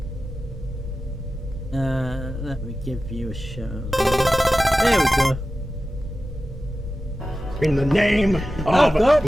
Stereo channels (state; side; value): normal; both; correlation 0.93